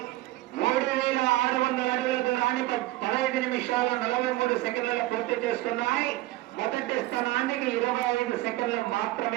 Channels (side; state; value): left; quieter; 18.0 dB